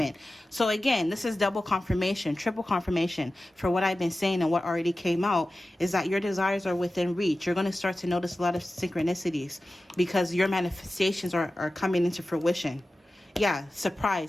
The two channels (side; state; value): both; normal; correlation 0.95